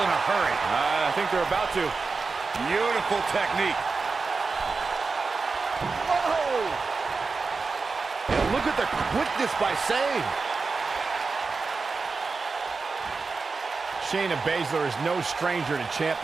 a hurry. I think they're about to. Beautiful technique. Whoa! And look at the quickness by Sane. Shayna Baszler is no stranger to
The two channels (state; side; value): quieter; left; 4.4 dB